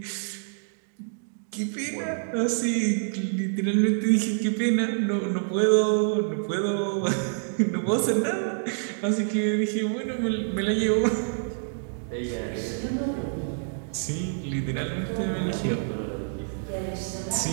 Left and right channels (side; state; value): left; silent; digital silence